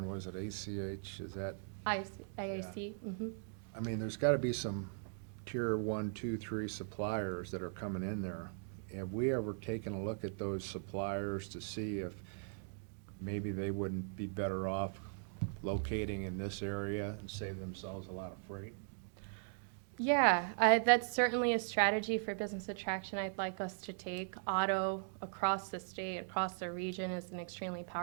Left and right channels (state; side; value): silent; left; digital silence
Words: was it ACH, is that, IAC. Mm-hmm. I mean, there's gotta be some tier 1, 2, 3 suppliers that are coming in there. Have we ever taken a look at those suppliers to see if maybe they wouldn't be better off locating in this area and save themselves a lot of freight? Yeah, that's certainly a strategy for business attraction I'd like us to take. Auto across the state, across the region is an extremely